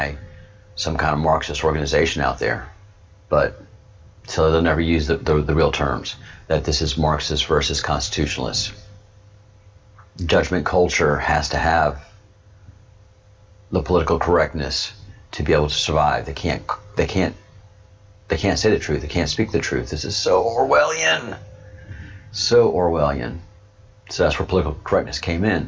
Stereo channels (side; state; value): both; identical; correlation 1.00